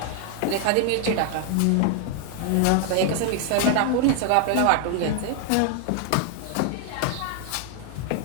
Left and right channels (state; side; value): different; both; correlation 0.00